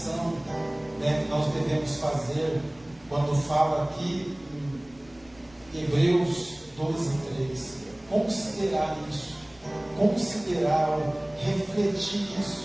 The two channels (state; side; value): noise; left; rumble, 27 dB below the sound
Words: que nós devemos fazer quando fala aqui em Hebreus 12:3. Considerar isso, considerar, refletir